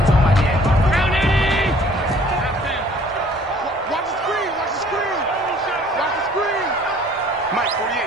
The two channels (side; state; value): both; normal; correlation 0.55